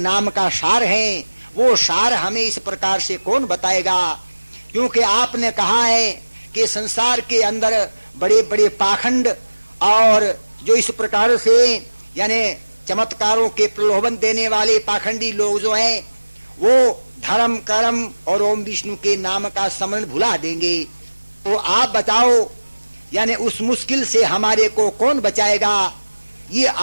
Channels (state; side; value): inverted; both; correlation -1.00